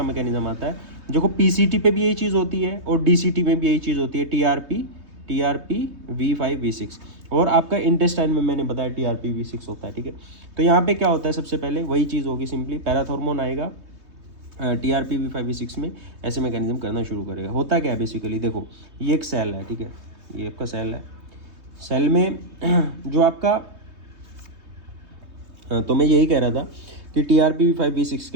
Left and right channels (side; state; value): left; late; 3.2 ms